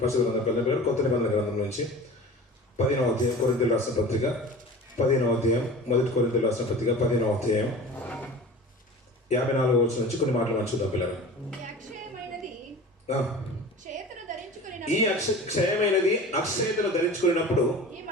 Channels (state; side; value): normal; both; correlation 0.37